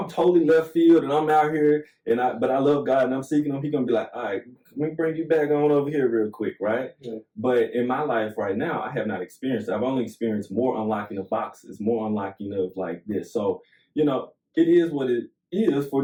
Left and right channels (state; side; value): identical; both; correlation 1.00